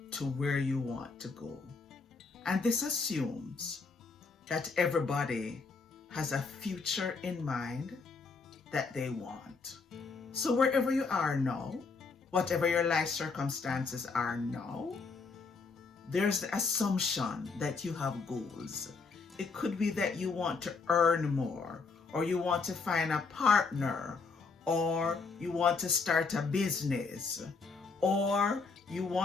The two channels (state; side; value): quieter; right; 4.5 dB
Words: to where you want to go. And this assumes that everybody has a future in mind that they want. So wherever you are now, whatever your life circumstances are now, there's the assumption that you have goals. It could be that you want to earn more, or you want to find a partner, or you want to start a business, or you